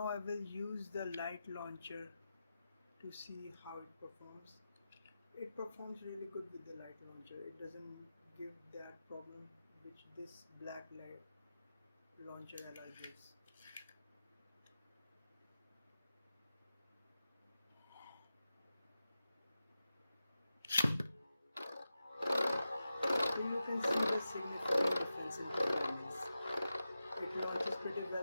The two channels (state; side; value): inverted; both; correlation -0.92